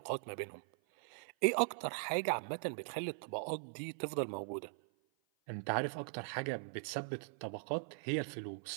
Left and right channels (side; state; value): left; silent; 51 dB below the other